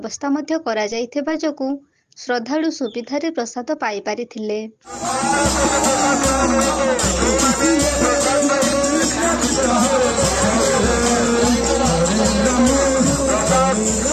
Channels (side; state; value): both; identical; correlation 1.00